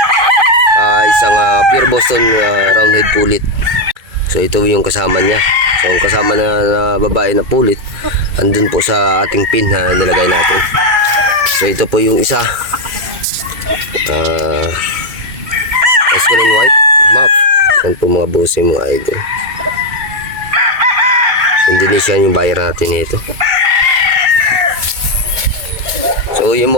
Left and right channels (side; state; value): left; late; 2.3 ms